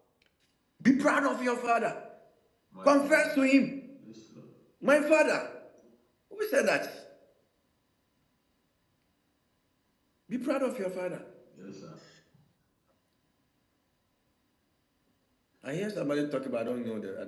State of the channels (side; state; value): both; identical; correlation 1.00